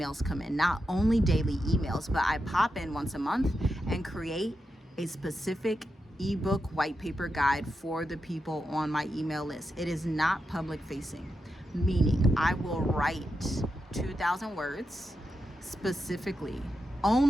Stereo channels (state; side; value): normal; both; correlation 0.87